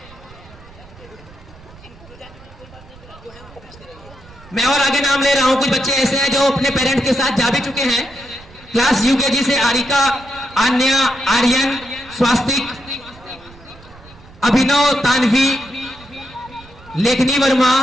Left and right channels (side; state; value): right; noise; rumble, 22 dB below the sound